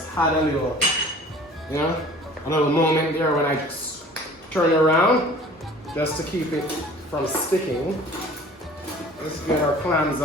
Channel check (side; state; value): both; normal; correlation 0.47